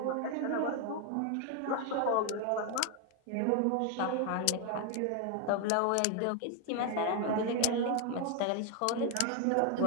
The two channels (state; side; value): different; both; correlation 0.01